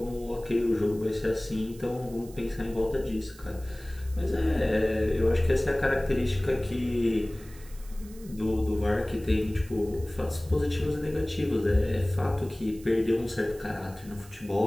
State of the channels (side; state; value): right; noise; hiss, 22 dB below the sound